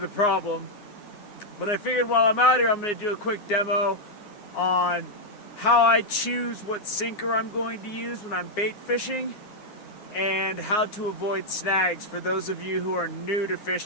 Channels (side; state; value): right; late; 9.6 ms